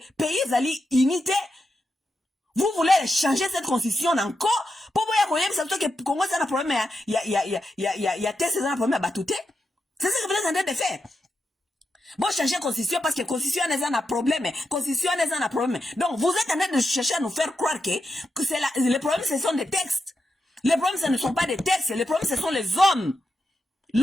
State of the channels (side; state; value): both; normal; correlation 0.87